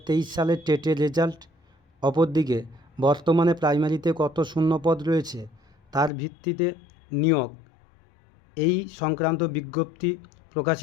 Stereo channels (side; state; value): right; drops out; at 6.1 s